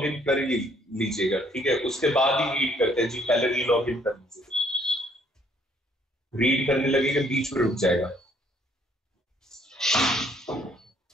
इन कर लीजिएगा, ठीक है, उसके बाद ही रीड करते हैं जी। पहले री लॉग इन कर लीजिएगा, रीड करने लगेगा बीच में रुक जाएगा।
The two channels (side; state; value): both; normal; correlation 0.65